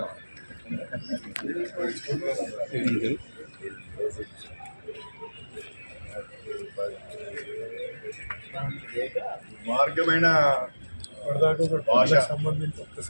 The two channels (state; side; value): inverted; both; correlation -1.00